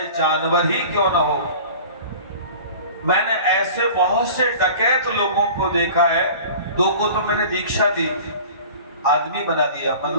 जानवर ही क्यों ना हो, मैंने ऐसे बहुत से डकैत लोगों को देखा है, 2 को तो मैंने दीक्षा दी, आदमी बना दिया,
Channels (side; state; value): both; inverted; correlation -0.41